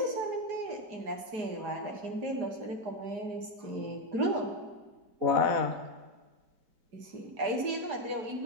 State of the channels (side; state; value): left; late; 4.8 ms